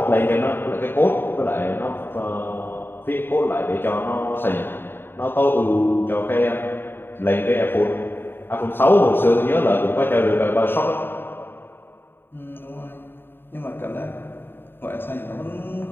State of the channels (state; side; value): late; right; 0.10 ms